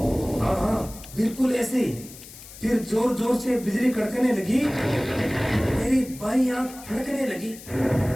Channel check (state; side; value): noise; left; hiss, 17 dB below the sound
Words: हाँ हाँ, बिल्कुल ऐसे ही। फिर जोर जोर से बिजली कड़कने लगी, मेरी बाईं आंख फड़कने लगी,